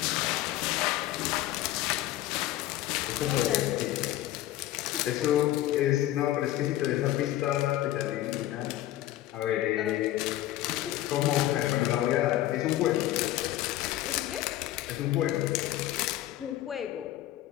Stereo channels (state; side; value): quieter; right; 14.2 dB